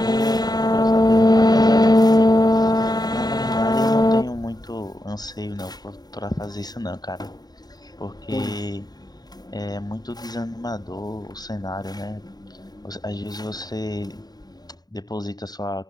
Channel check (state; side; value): late; right; 0.19 ms